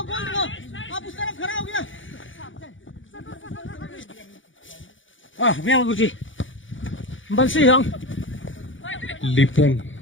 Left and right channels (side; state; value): right; late; 0.56 ms